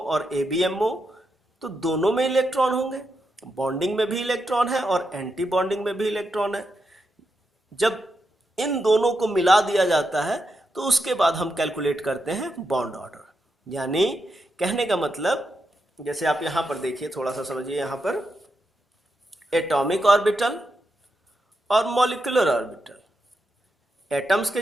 और ABMO, तो दोनों में इलेक्ट्रॉन होंगे, बॉन्डिंग में भी इलेक्ट्रॉन है और एंटी बॉन्डिंग में भी इलेक्ट्रॉन है। जब इन दोनों को मिला दिया जाता है तो उसके बाद हम कैलकुलेट करते हैं बॉन्ड ऑर्डर। यानी कहने का मतलब, जैसे आप यहां पर देखिए, थोड़ा सा समझिए, यहां पर एटॉमिक ऑर्बिटल और मॉलिक्यूलर ऑर्बिटल, एटम्स के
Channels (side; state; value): both; normal; correlation 0.84